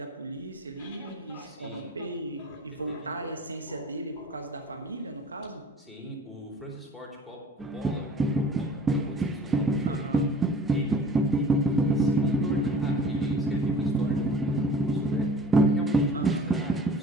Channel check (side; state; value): both; normal; correlation 0.46